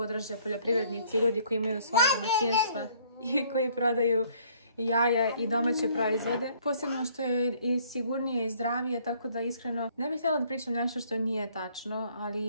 poljoprivrednici i ljudi koji imaju svoje domaćinstva i koji prodaju jaja i domaće proizvode. Posebno što je i sigurnije i zdravije, tako da iskreno ne bih htjela da pričam nešto što nije tačno,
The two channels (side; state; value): both; inverted; correlation -0.61